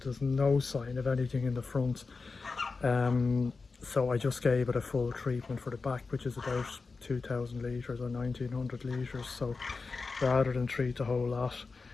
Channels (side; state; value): right; quieter; 4.3 dB